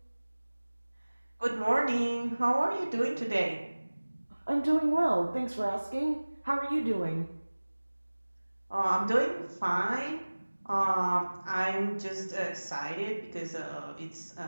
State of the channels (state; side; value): inverted; both; correlation -1.00